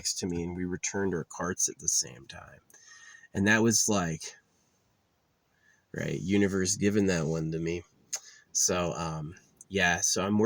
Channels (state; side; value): identical; both; correlation 1.00